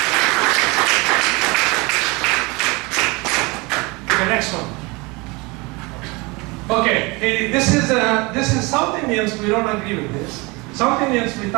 Okay, next one. Okay, this is South Indians, we don't agree with this. South Indians, we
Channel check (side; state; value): left; quieter; 26.0 dB